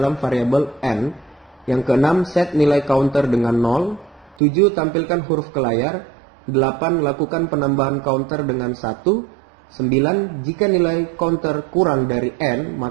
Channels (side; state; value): left; drops out; at 4.4 s